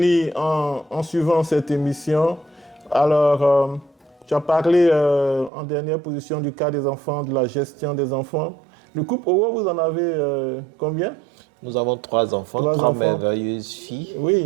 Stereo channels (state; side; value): drops out; left; at 5.5 s